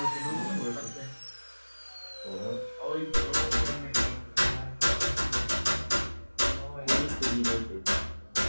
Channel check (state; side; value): inverted; both; correlation -1.00